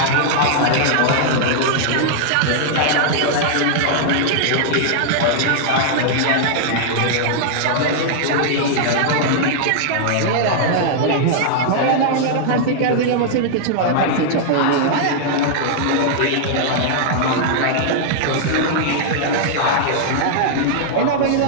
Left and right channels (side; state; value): both; different; correlation -0.01